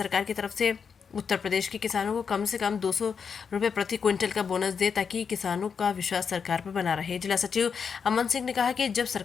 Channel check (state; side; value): quieter; right; 6.3 dB